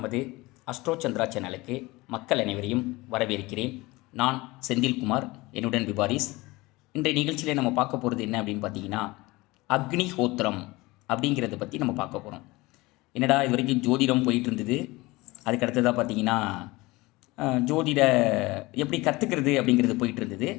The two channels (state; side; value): quieter; right; 21.7 dB